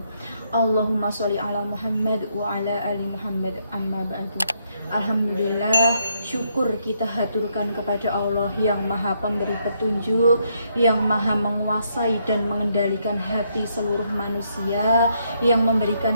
Allahumma sholli ala Muhammad wa ala ali Muhammad, amma ba'du. Alhamdulillah, syukur kita haturkan kepada Allah yang maha pemberi petunjuk, yang maha menguasai dan mengendalikan hati seluruh manusia, yang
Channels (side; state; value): both; inverted; correlation -0.75